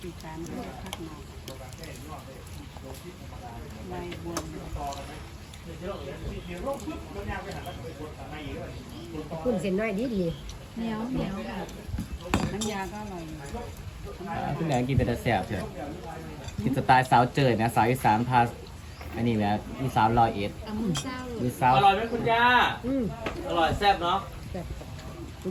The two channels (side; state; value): both; identical; correlation 1.00